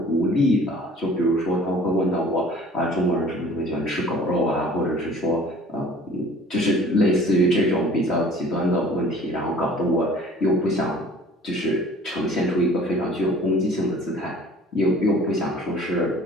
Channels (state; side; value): normal; both; correlation 0.49